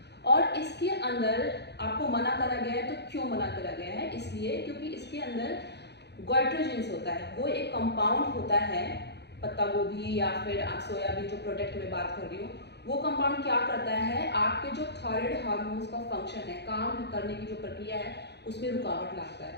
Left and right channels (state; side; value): late; right; 0.49 ms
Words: और इसके अंदर आपको मना करा गया है, तो क्यों मना करा गया है, इसलिए क्योंकि इसके अंदर गोइट्रोजेंस होता है, वो एक कंपाउंड होता है, पत्ता गोभी या फिर आप सोयाबीन जो प्रोडक्ट में बात कर रही हूँ, वो कंपाउंड क्या करता है, आपके जो थायराइड हार्मोन्स का फंक्शन है, काम करने की जो प्रक्रिया है उसमें रुकावट लाता